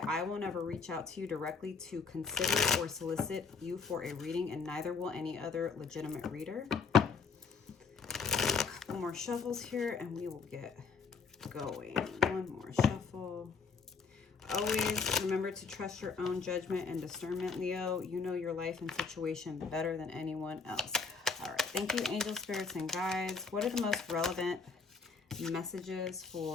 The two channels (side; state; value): right; quieter; 5.0 dB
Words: I will never reach out to you directly to consider or solicit you for a reading, and neither will any other legitimate reader. A couple more shuffles here and we will get going. One more shuffle. Always remember to trust your own judgment and discernment, Leo. You know your life and situation better than anyone else. All right, thank you, angel spirits and guides. What are the most relevant messages